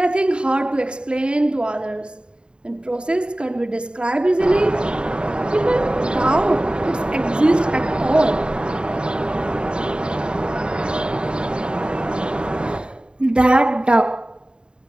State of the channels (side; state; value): left; late; 0.051 ms